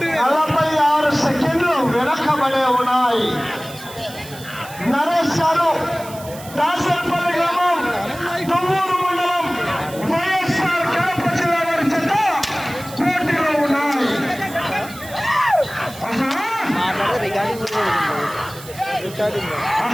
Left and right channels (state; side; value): noise; right; hiss, 17 dB below the sound